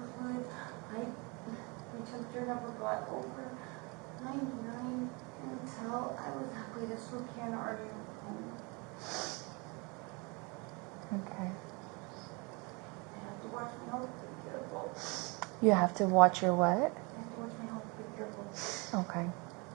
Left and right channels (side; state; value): left; quieter; 29.4 dB